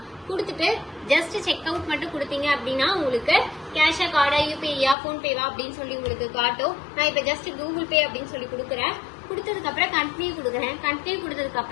கொடுத்துட்டு ஜஸ்ட் செக் அவுட் மட்டும் கொடுத்தீங்க அப்படின்னா உங்களுக்கு கேஷா, கார்டா, யூபிஐயா, போன்பேவா அப்படின்னு சொல்லி உங்களுக்கு காட்டும். நான் இப்ப ஜஸ்ட் கூகுள் பே அப்படின்னு சொல்லி கொடுக்குறேன். கொடுத்ததுக்கு அப்புறம் கண்டினியூ கொடுக்குறேன். கண்டினியூ கொடுத்ததுக்கு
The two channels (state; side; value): drops out; right; at 5.0 s